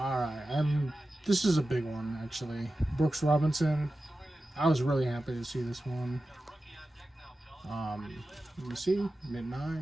right, this is a big one actually. Brooks Robinson. I was really happy to see this one. Let me see,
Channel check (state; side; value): normal; both; correlation 0.94